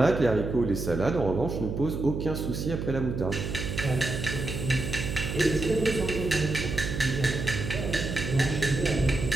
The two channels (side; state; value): right; noise; hum, 4 dB below the sound